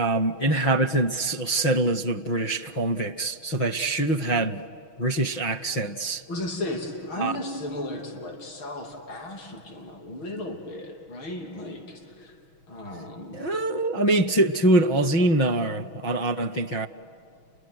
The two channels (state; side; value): late; right; 6.2 ms